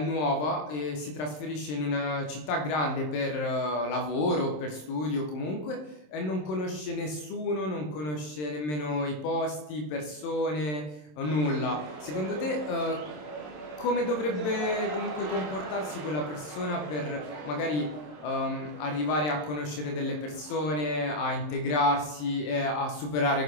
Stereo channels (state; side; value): late; right; 27 ms